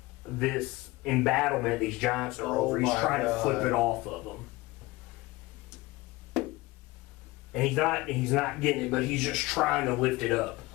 this embattlement these giants are over. He's my trying to flip God. it off of them. And he's not getting it, but he's just trying to lift it up.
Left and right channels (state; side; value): quieter; right; 21.2 dB